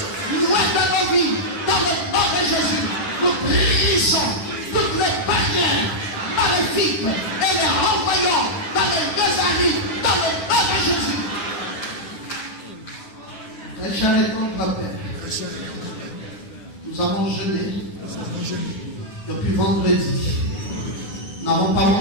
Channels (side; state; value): right; late; 10 ms